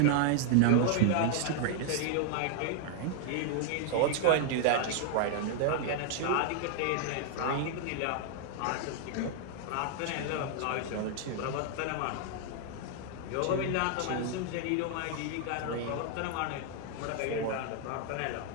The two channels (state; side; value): different; both; correlation 0.00